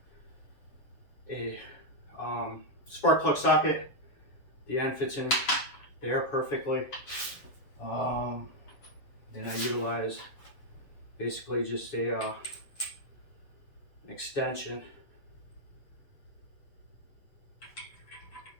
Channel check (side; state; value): right; late; 7.2 ms